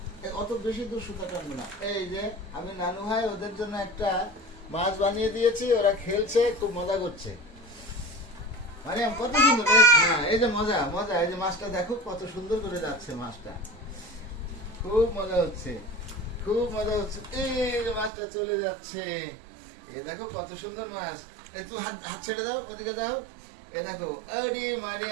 অত বেশি দূর সুতা টানবো না। এই যে আমি নানু ভাই ওদের জন্য একটা মাছ বানিয়ে দিয়েছি, ওরা খেলছে, খুব মজা করছে। মারিয়াম কত সুন্দর, হ্যাঁ এই যে মজা মজা, এই যে মাছটা দেখো কত সুন্দর করে যাচ্ছে মাছটা, খুব মজা হচ্ছে, খুব মজা হচ্ছে। এই যে মাছটা চলে যাচ্ছে, এই দেখো কত সুন্দর মাছ। একটু হাত হাত ছেড়ে দাও, ওদিকে দাও। এই দেখো, আরে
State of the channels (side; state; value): left; drops out; at 18.1 s